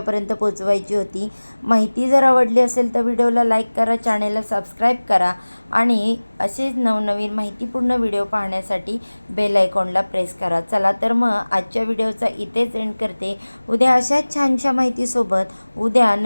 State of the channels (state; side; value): inverted; both; correlation -1.00